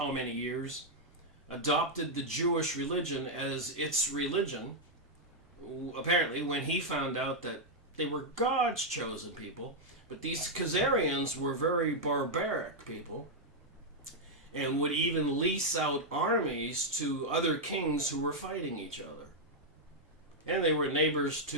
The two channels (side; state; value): both; normal; correlation -0.02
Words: many years, adopted the Jewish religion as its religion. Apparently, when he found out that they were God's chosen people, but these Khazarians were very barbaric people, and would even lease out armies to other kings who were fighting each other. And they were neighbors